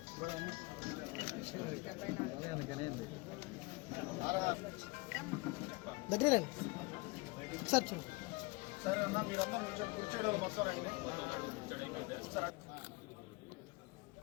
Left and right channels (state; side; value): quieter; right; 24.9 dB